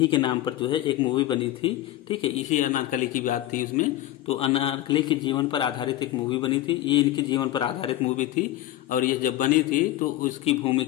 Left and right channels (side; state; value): right; quieter; 14.5 dB